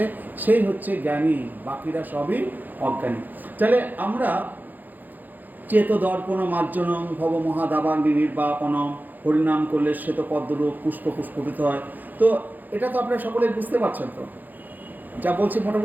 সেই হচ্ছে জ্ঞানী, বাকিরা সবই অজ্ঞানী। তাহলে আমরা চেত দর্পণ মার্জনম ভব মহাদাবাগ্নি নির্বাপনম, হরিনাম করলে শ্বেত পদ্মরূপ পুষ্প পুষ্পিত হয়। তো এটা তো আপনারা সকলে বুঝতে পারছেন, তো যা বলছি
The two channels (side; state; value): left; late; 0.085 ms